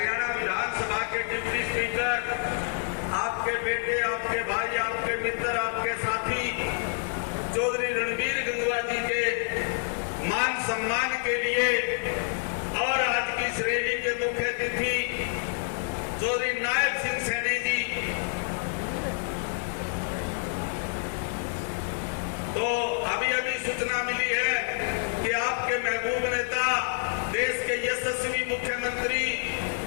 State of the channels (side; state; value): right; silent; 59 dB below the other